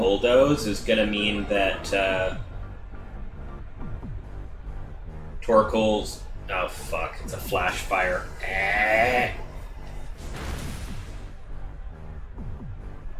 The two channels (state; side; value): identical; both; correlation 1.00